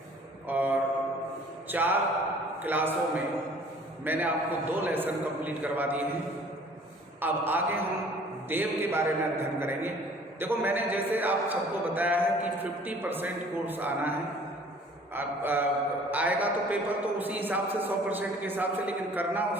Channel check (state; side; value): normal; both; correlation 0.52